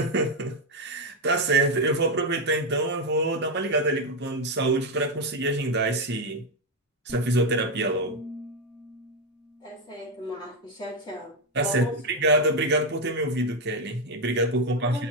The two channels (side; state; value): both; normal; correlation 0.06